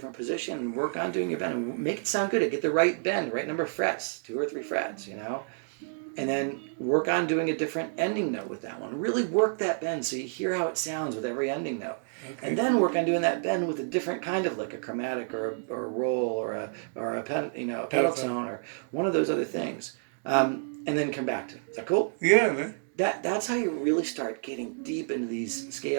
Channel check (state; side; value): silent; left; digital silence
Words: position and work on doing your bend and make it sound good, get the right bend, right number of frets, 2 or 3 frets, and then work on doing a different ending note with that one. Really work that bend so you hear how it sounds with every ending note. Okay. And then work on doing that bend with a different kind of lick, a chromatic or a roll or a pedal tone or one of those other things. And then come back to it. Is that cool? Yeah, man. That's how you really start getting deep into these